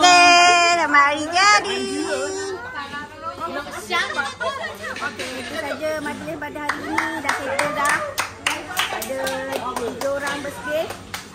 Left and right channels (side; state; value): both; identical; correlation 1.00